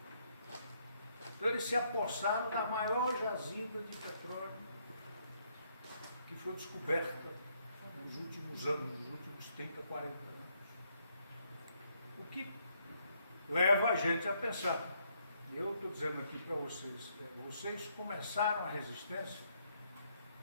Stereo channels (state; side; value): inverted; both; correlation -0.72